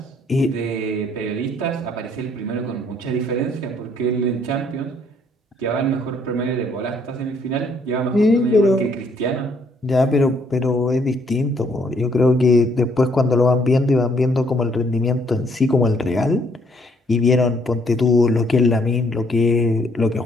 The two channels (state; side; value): normal; both; correlation 0.67